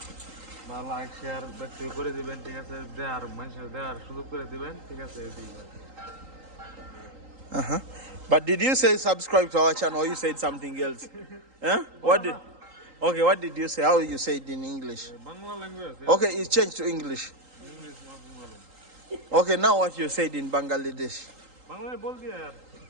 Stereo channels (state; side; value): late; left; 3.8 ms